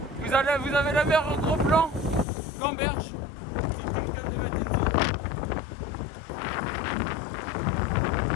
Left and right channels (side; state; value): right; drops out; at 2.2 s